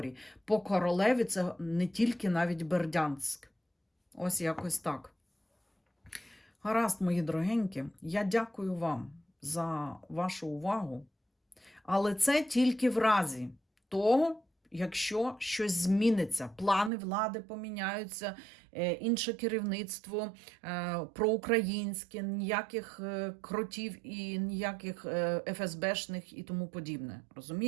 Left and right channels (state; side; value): drops out; left; at 16.9 s